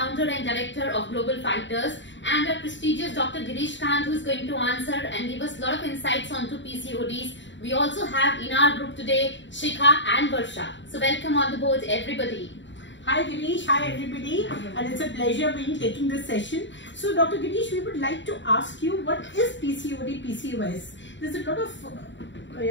and director of Global Fighters, and our prestigious Dr. Girish Kant, who is going to answer and give us a lot of insights onto PCODs. We also have in our group today Shikha and Varsha. So welcome on the board everybody. Hi Girish, hi everybody, and it's a pleasure being taking this session. So Dr. Girish, we would like to ask you, what is PCOD, PCOS? There's a lot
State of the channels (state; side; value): late; right; 0.54 ms